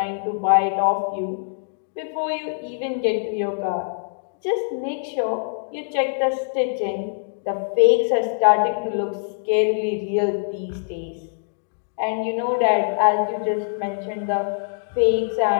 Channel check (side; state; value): right; silent; digital silence